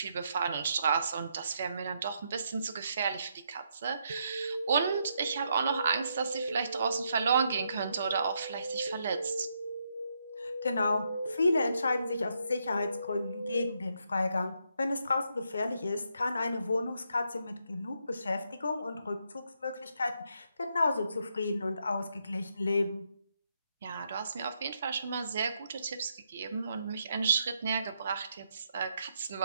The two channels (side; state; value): both; inverted; correlation -0.78